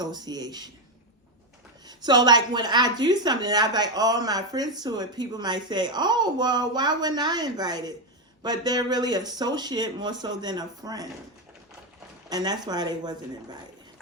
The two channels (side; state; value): both; normal; correlation 0.07